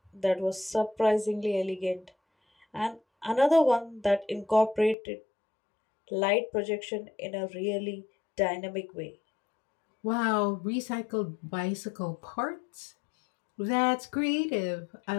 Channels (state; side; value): drops out; right; at 5.0 s